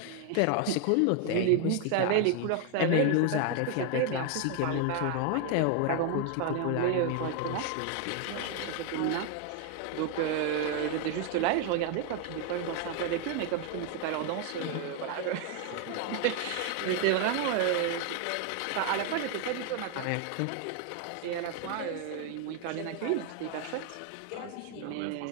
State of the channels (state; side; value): different; both; correlation 0.01